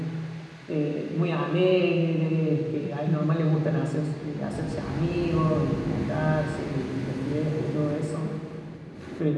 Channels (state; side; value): identical; both; correlation 1.00